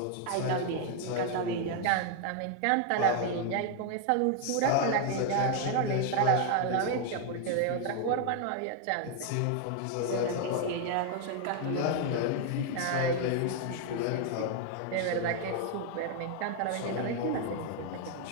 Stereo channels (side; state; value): both; different; correlation 0.00